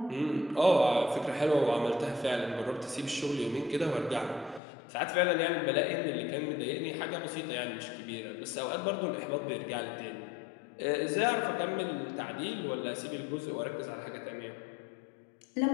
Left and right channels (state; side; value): drops out; right; at 4.6 s